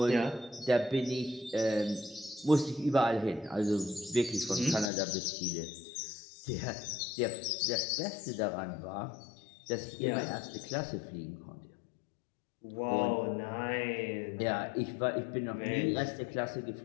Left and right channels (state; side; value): drops out; right; at 4.9 s